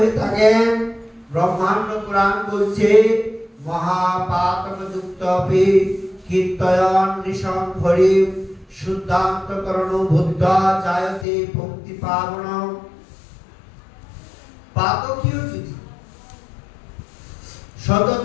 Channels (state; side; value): drops out; right; at 11.2 s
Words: থাকেন। ব্রহ্মাণ্ড পুরাণ বলছে, মহাপাতকযুক্তপি কীর্তয়ন নিশং হরি শুদ্ধান্তকরণ বুদ্ধা জায়তে পঙ্ক্তি পাবন। পাতকীও যদি